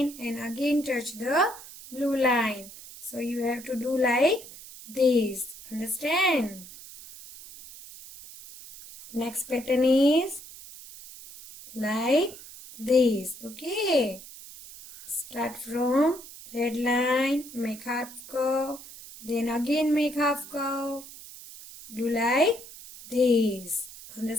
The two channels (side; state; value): right; noise; hiss, 16 dB below the sound